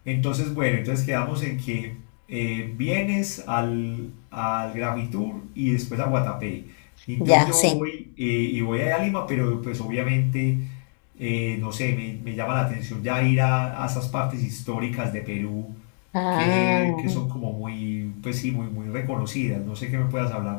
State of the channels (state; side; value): silent; right; digital silence